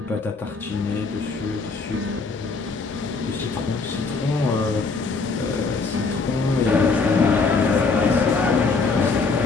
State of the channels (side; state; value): right; quieter; 4.3 dB